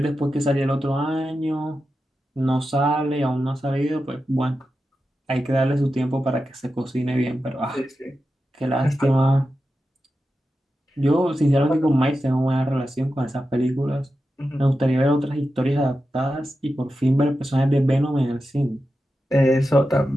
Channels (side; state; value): both; normal; correlation 0.91